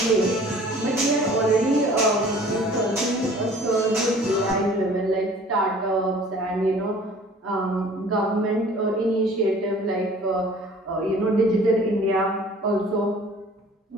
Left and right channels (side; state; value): both; normal; correlation 0.50